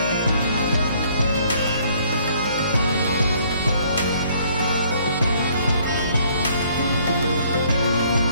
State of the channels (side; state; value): both; inverted; correlation -0.62